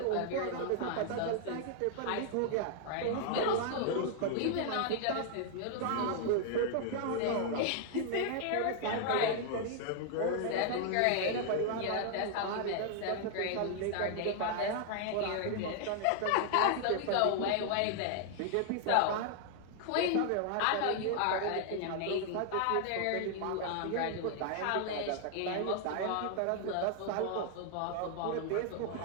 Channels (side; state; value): both; different; correlation 0.00